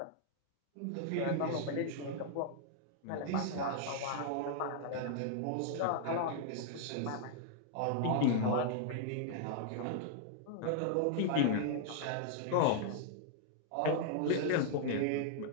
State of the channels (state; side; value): different; both; correlation -0.01